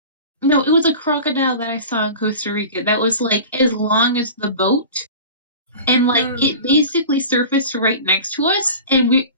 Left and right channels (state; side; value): inverted; both; correlation -0.36